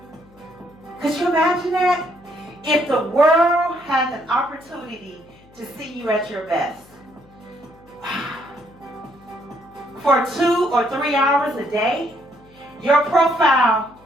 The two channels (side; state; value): left; noise; hum, 27 dB below the sound